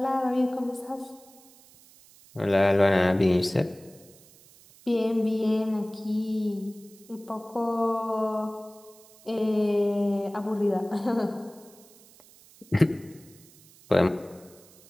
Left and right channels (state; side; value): noise; right; hiss, 25 dB below the sound